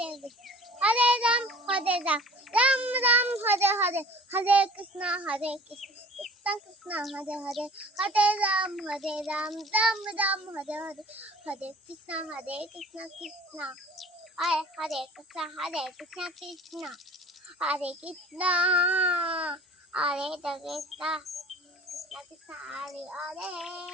Krishna, Hare Ram, Ram Ram, Hare Hare, Hare Krishna, Hare Krishna, Krishna Krishna, Hare Hare, Hare Ram, Ram Ram, Hare Hare, Hare Krishna, Krishna. Hare Krishna, Krishna Krishna, Hare Krishna, Hare Krishna, Krishna Krishna, Hare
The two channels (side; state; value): both; normal; correlation 0.47